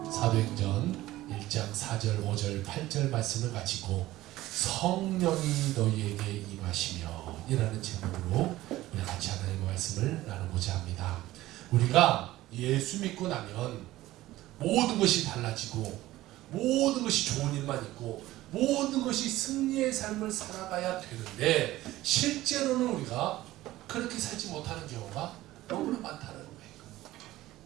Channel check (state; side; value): quieter; left; 16.3 dB